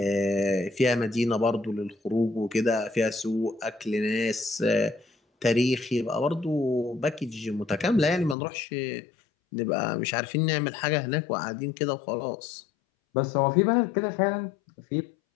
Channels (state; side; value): drops out; right; at 8.3 s